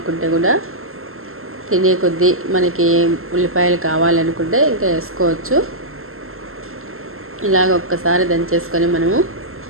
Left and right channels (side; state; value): left; late; 0.62 ms